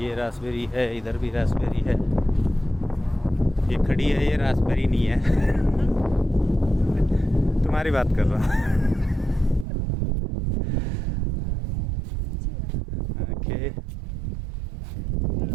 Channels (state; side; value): drops out; left; at 9.7 s